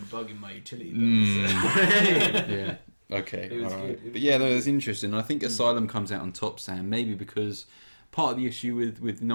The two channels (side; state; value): both; inverted; correlation -1.00